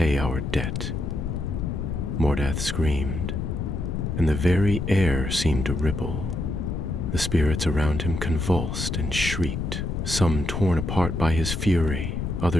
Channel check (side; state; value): left; noise; rumble, 3 dB below the sound